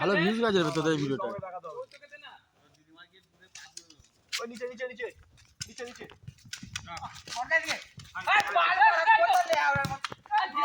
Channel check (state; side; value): identical; both; correlation 1.00